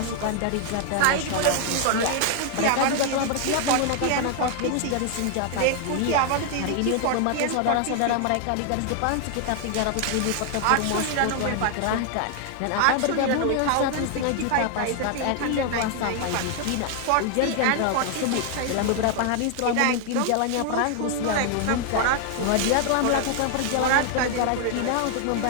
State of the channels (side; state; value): both; different; correlation 0.00